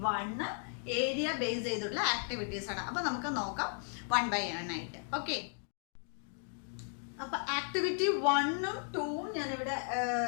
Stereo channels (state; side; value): silent; right; 54 dB below the other